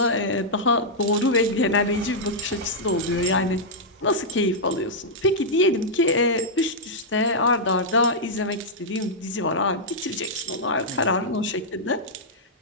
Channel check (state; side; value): normal; both; correlation -0.08